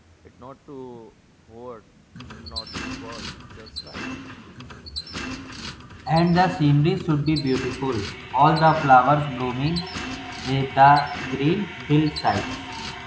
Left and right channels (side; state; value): both; identical; correlation 1.00